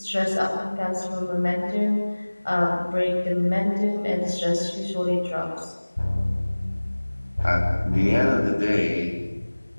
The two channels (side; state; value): both; inverted; correlation -1.00